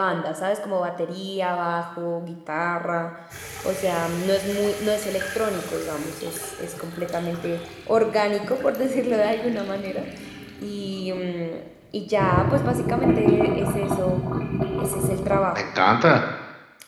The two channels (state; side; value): identical; both; correlation 1.00